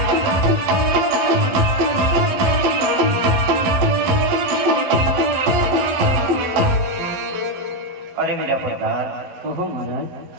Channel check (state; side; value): late; left; 11 ms